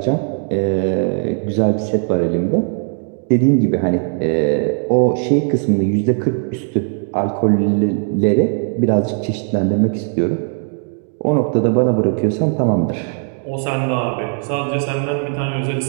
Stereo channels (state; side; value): silent; left; 55 dB below the other